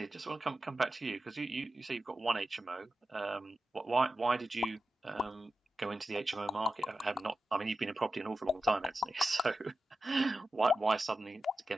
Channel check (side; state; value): both; normal; correlation 0.92